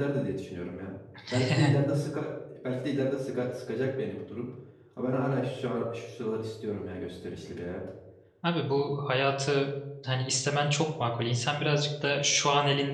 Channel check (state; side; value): identical; both; correlation 1.00